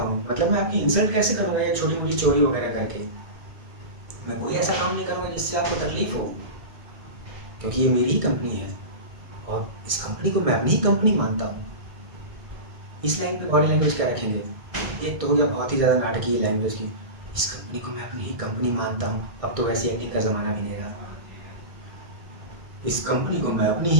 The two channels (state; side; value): late; left; 1.6 ms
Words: मतलब मैं आपकी इंसल्ट कैसे करूँगा ये छोटी मोटी चोरी वगैरह करके? मैं कोई ऐसा काम नहीं करूँगा जिससे आपको तकलीफ हो, क्योंकि ये मेरी ही कंपनी है और इस कंपनी को मैं अपनी ही कंपनी मानता हूँ। इस लाइन पे बॉडी लैंग्वेज क्या रखेंगे? एक तो हो गया बहुत ही ज़्यादा नाटकीय लैंग्वेज की, इस कंपनी को मैं अपनी ही कंपनी मानता हूँ। अब तो वैसी एक्टिंग का ज़माना भी नहीं रहा। इस कंपनी को मैं अपनी